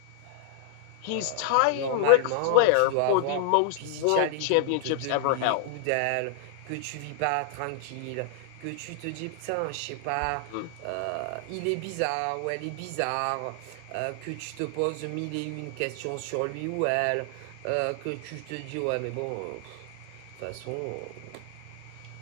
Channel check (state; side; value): different; both; correlation -0.01